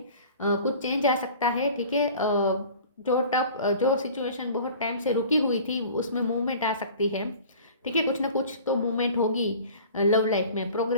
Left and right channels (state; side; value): inverted; both; correlation -0.44